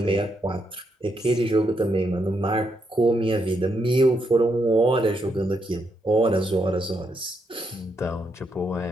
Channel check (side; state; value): both; normal; correlation 0.79